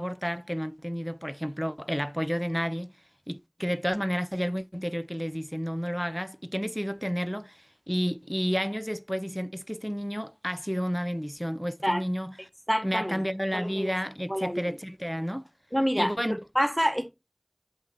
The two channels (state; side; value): identical; both; correlation 1.00